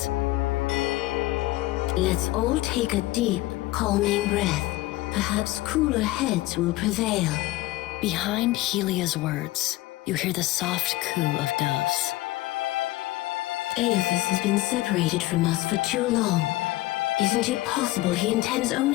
Let's all take a deep, calming breath. Perhaps cooler heads will prevail. Behind Helia's words, you hear the soft coo of doves. Aethys has been separated from us for too long. Isn't it possible he intends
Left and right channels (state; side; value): quieter; right; 18.2 dB